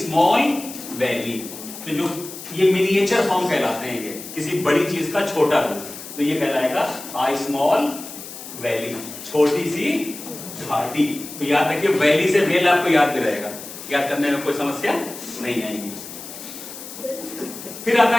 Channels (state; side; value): noise; left; hiss, 12 dB below the sound